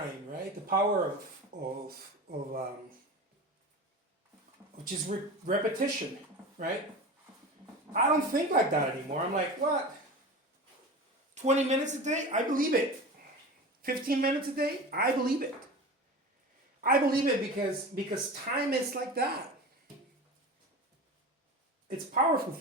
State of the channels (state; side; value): normal; both; correlation 0.31